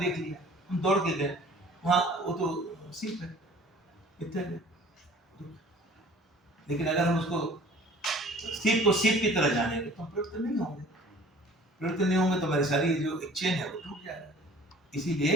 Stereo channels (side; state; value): both; normal; correlation 0.48